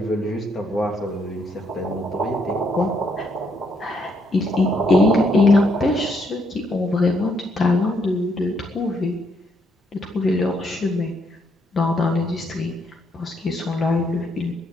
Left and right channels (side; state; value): both; normal; correlation 0.74